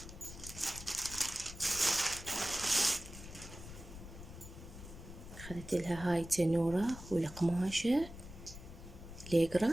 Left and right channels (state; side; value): noise; left; rumble, 13 dB below the sound